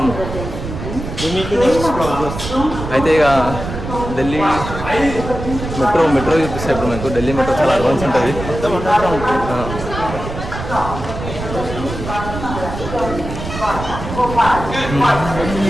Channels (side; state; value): right; noise; rumble, 8 dB below the sound